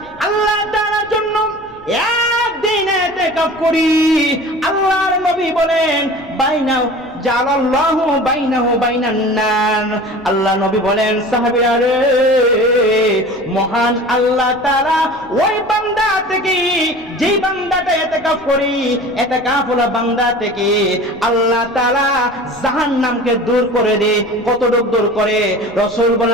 আল্লাহ তাআলার জন্য একদিন ইতিকাফ করি, আল্লাহর নবী বলেন বাইনাহু জালাল্লাহু বাইনাহু বাইনান নার, আল্লাহ নবী বলেন সাহাবীরা রে, মহান আল্লাহ তাআলা ওই বান্দা থেকে, যেই বান্দাটা ইতিকাফ করি, ইতিকাফ হলো বান্দা থেকে আল্লাহ তাআলা জাহান্নামকে দূর করে দেয়। কতটুকু দূর করে? রাসূল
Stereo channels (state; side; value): noise; left; rumble, 26 dB below the sound